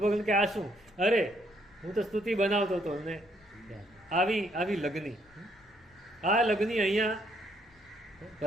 કે આ શું? અરે હું તો સ્તુતિ બનાવતો હતો. ને આવી લગ્ની, આ લગ્ની અહીંયા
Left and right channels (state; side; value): noise; left; rumble, 30 dB below the sound